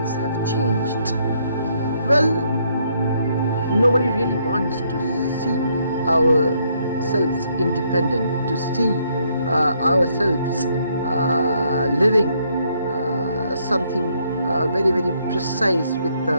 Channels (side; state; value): both; inverted; correlation -0.71